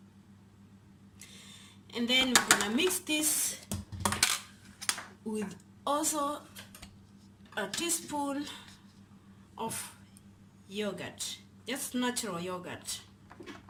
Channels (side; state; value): both; identical; correlation 1.00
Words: And then we're gonna mix this with also a teaspoon of yogurt, just natural yogurt.